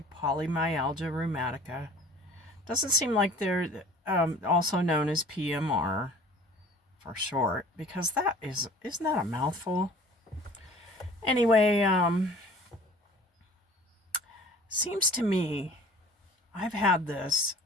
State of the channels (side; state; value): both; normal; correlation 0.47